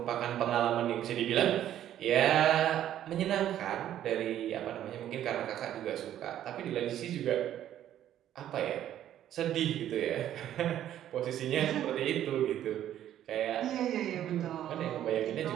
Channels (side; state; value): left; quieter; 11.5 dB